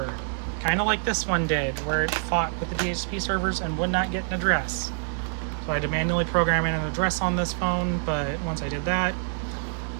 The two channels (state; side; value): silent; left; digital silence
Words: kind of like this one did, where it fought with the DHCP servers and would not get an address. So I had to manually program in an address on this phone, but once I did that,